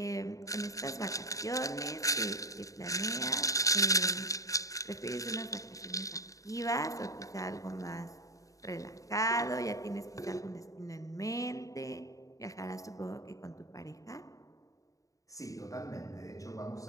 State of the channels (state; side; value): late; right; 0.16 ms